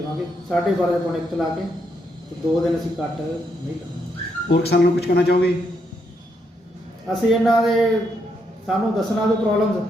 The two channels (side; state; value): both; normal; correlation 0.78